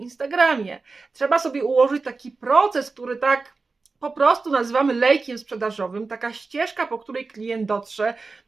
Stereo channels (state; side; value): quieter; left; 4.0 dB